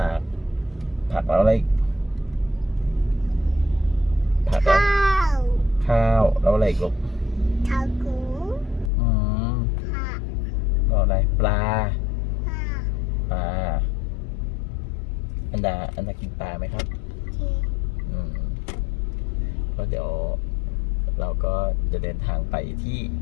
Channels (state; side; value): drops out; right; at 8.9 s